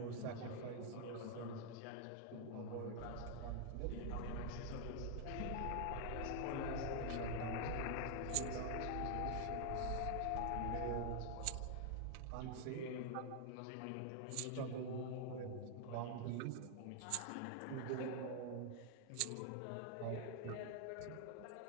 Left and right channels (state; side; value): different; both; correlation 0.00